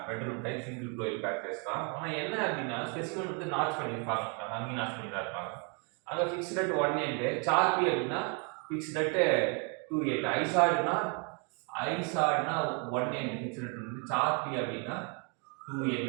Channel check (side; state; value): left; quieter; 36.1 dB